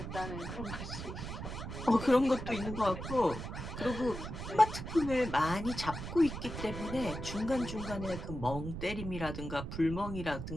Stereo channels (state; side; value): noise; right; rumble, 7 dB below the sound